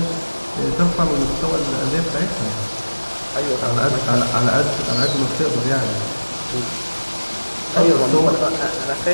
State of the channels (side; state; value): both; inverted; correlation -1.00